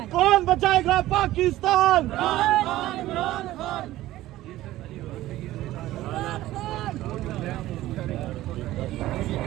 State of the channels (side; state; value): left; quieter; 15.6 dB